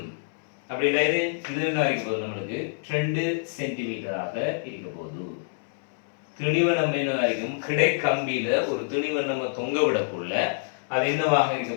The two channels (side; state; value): right; silent; digital silence